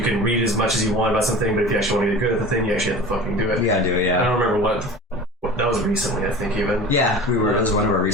can read as much as you want about something, but if you actually want to get good at the thing, you actually have to fucking do it. You gotta do it, yeah. I don't remember what that was recently, I think, even. Yeah, that was one of our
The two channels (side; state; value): both; normal; correlation 0.37